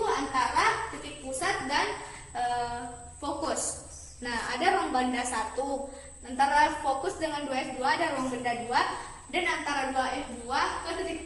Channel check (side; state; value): both; identical; correlation 1.00